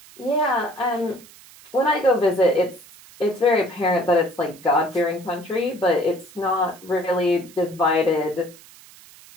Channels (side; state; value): right; noise; hiss, 22 dB below the sound